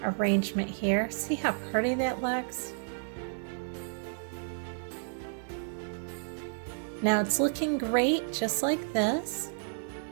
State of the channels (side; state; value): left; silent; digital silence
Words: arrangement here. See how pretty that looks? Now it's looking great just like this,